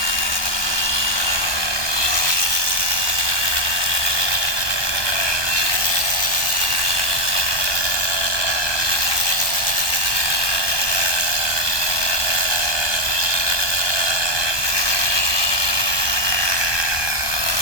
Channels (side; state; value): right; late; 1.2 ms